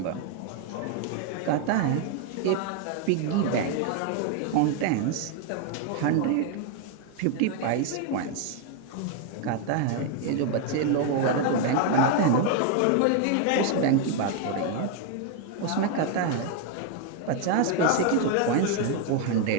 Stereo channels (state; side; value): different; both; correlation 0.01